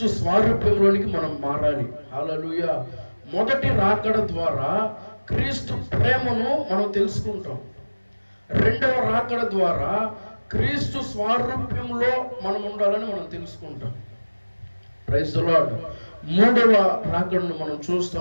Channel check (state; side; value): inverted; both; correlation -1.00